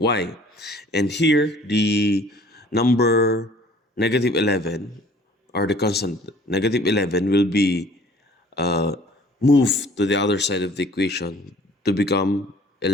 And here, the number negative 11, or the constant negative 11, will be moved to the other side of the equation to become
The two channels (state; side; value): normal; both; correlation 0.53